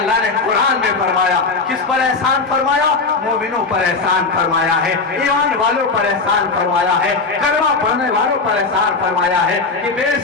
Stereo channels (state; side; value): quieter; right; 4.1 dB